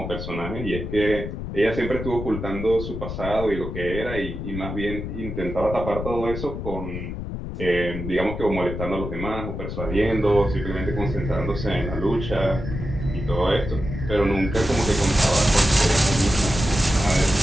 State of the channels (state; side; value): noise; left; rumble, 6 dB below the sound